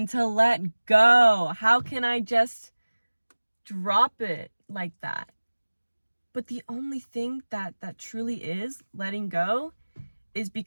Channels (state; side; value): inverted; both; correlation -1.00